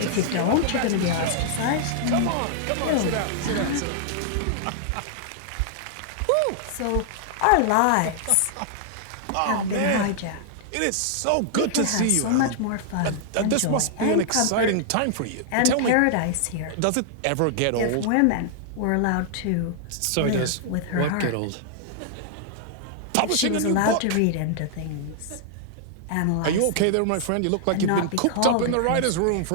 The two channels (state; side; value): different; both; correlation -0.01